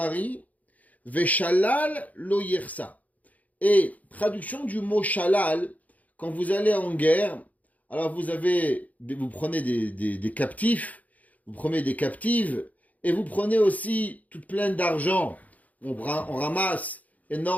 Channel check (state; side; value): late; right; 0.075 ms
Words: Veshalal lo yersa. Et traduction du mot shalal, quand vous allez en guerre, alors vous prenez des captifs, vous prenez des captives, et vous prenez aussi toute pleine d'argent. On ramasse